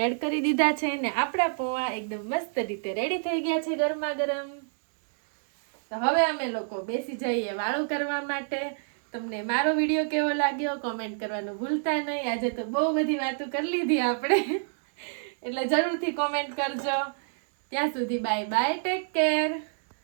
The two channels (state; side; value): silent; left; digital silence